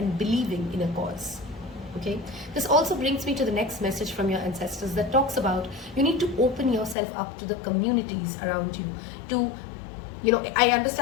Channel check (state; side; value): drops out; right; at 7.0 s